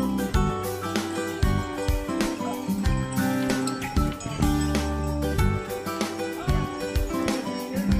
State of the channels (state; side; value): identical; both; correlation 1.00